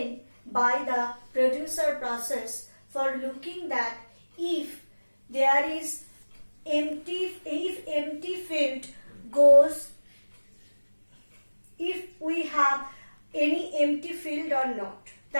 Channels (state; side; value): inverted; both; correlation -1.00